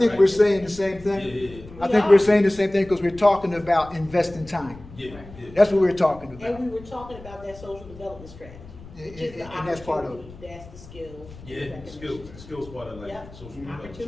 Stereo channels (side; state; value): left; noise; rumble, 18 dB below the sound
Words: we're saying the same Yeah, thing. yeah, I think we're saying the same thing because we're talking about investing time. yeah, yeah. That's what we're talking And about. we were talking about that social development strategy. And- Which is the and that's part of it. opportunity, that's the skill. Yeah, skills part of like Yep. social development.